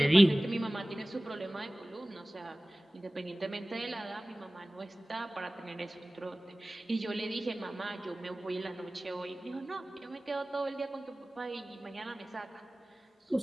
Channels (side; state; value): both; normal; correlation 0.98